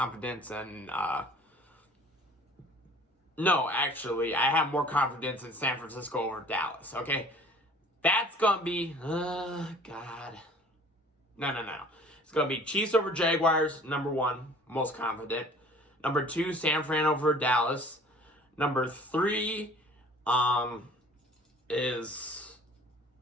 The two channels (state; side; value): normal; both; correlation 0.49